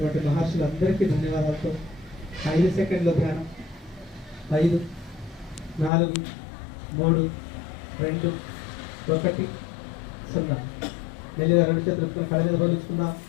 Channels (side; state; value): right; drops out; at 5.9 s